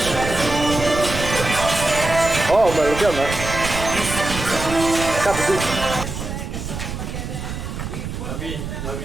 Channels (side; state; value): right; noise; rumble, 6 dB below the sound